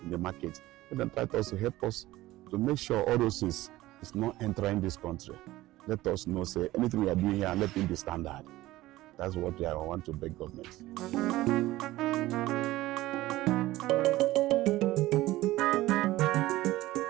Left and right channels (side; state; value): left; quieter; 17.1 dB